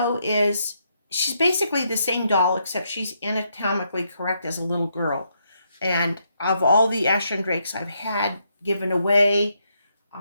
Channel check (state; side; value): inverted; both; correlation -0.78